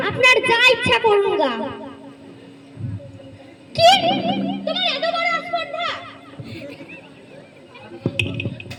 আপনার যা ইচ্ছা করুন গা। কি? তোমার এত বড় আস্পর্ধা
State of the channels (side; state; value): both; identical; correlation 1.00